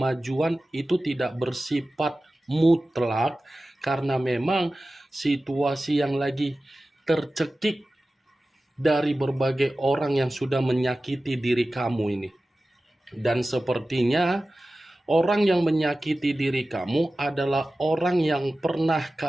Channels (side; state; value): both; normal; correlation 0.95